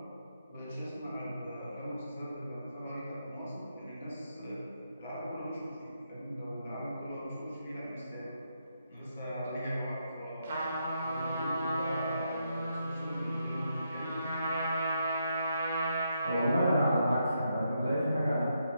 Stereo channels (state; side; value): inverted; both; correlation -0.80